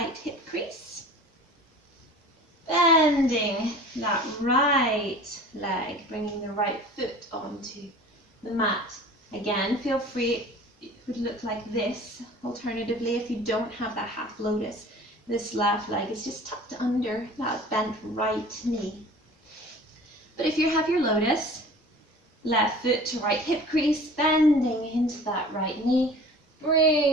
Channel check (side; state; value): both; normal; correlation 0.43